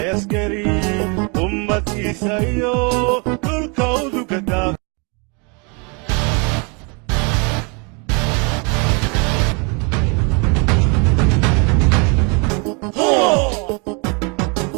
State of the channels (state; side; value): quieter; left; 32.9 dB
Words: يسكري أمتي سيو الكود كدا